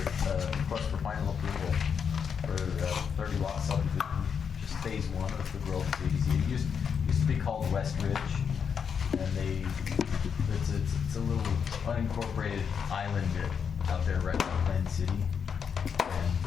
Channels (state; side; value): quieter; right; 6.9 dB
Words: for final approval for 30 lot subdivision, just phase 1 of the Grove JDC. It used to be called West Ridge, and it's a little unincorporated island out there right by Glen City, and